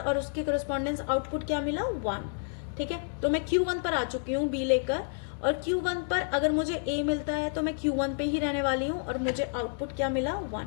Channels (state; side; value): silent; right; 58 dB below the other